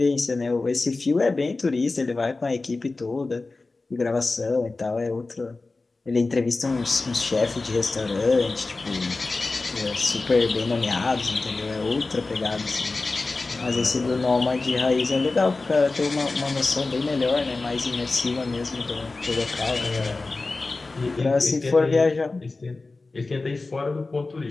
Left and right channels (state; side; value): quieter; right; 3.5 dB